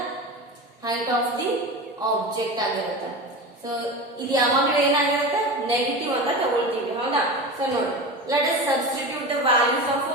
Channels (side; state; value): both; normal; correlation 0.27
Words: height of the object ಆಗಿರುತ್ತೆ. So ಇದು ಯಾವಾಗಲೂ ಏನಾಗಿರುತ್ತೆ negative ಅಂತ ತಗೊಳ್ತೀವಿ. ಹೌದಾ? So ನೋಡಿ let us substitute the values of